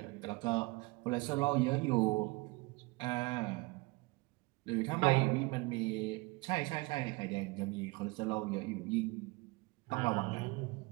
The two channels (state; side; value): quieter; left; 24.7 dB